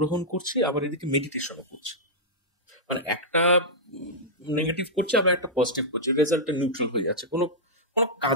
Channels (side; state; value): both; normal; correlation -0.10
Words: করছি, আবার এদিকে মেডিটেশনও করছি, মানে একটা নেগেটিভ করছে আবার একটা পজিটিভ করছে, রেজাল্টটা নিউট্রাল হয়ে যাচ্ছে, কোনো কোনো